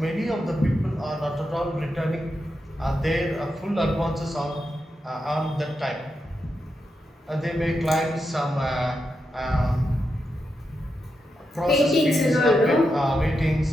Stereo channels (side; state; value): both; normal; correlation 0.86